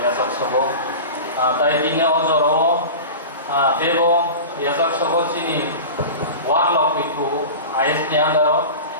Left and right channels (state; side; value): inverted; both; correlation -0.32